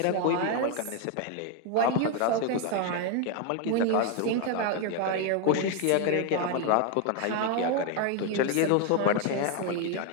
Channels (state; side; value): different; both; correlation 0.01